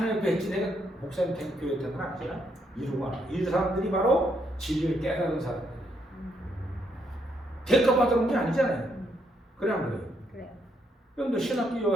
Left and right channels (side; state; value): both; normal; correlation 0.75